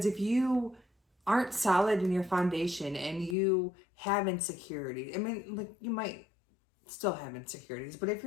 if you aren't solid in your foundation and you have insecurity, I mean, you might still have insecurities, but if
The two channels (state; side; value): drops out; right; at 3.4 s